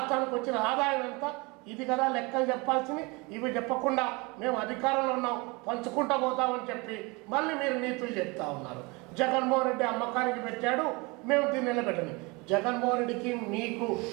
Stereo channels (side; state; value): left; quieter; 26.8 dB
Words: వచ్చిన ఆదాయం ఎంత, ఇది కదా లెక్కలు చెప్పాల్సింది. ఇవి చెప్పకుండా మేము అధికారంలో ఉన్నాం పంచుకుంటా పోతామని చెప్పి మళ్ళీ మీరు నీతులు చెప్తా ఉన్నారు. జగన్మోహన్ రెడ్డి అమ్మకానికి పెట్టాడు, మేము దీన్ని నిలబెట్టని. జగన్మోహన్ రెడ్డికి మీకు